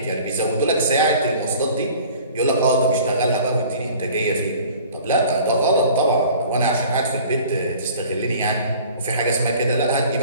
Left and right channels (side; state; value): both; inverted; correlation -0.47